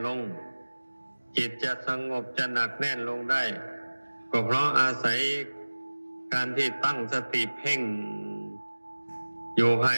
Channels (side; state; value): both; inverted; correlation -1.00